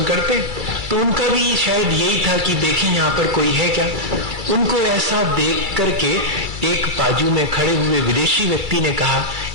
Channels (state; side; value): late; left; 2.3 ms